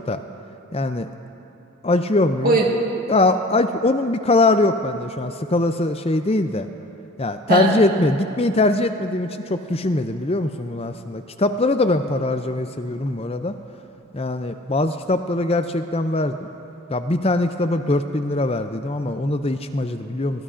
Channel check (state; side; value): normal; both; correlation 0.48